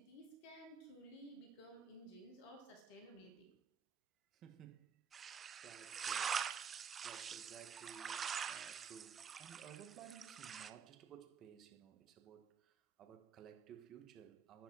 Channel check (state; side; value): quieter; left; 6.8 dB